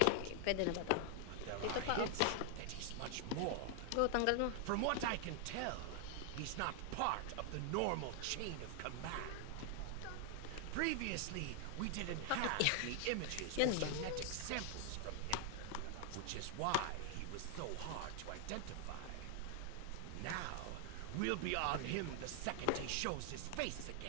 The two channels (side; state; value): both; different; correlation 0.00